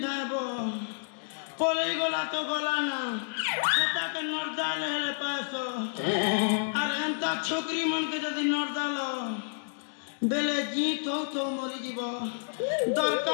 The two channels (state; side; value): silent; right; digital silence